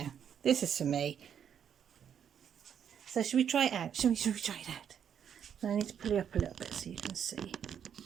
This is for me. So should we try it out? Should we try it out? I need to pull it up a little bit so you can see.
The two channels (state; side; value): quieter; left; 8.4 dB